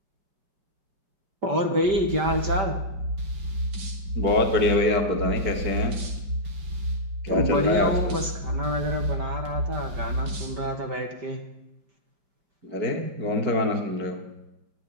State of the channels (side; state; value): left; late; 5.1 ms